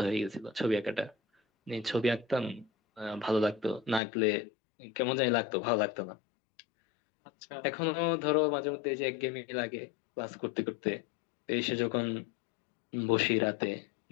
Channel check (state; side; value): drops out; right; at 4.0 s